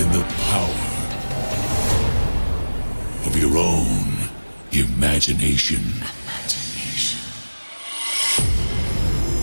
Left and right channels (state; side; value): inverted; both; correlation -1.00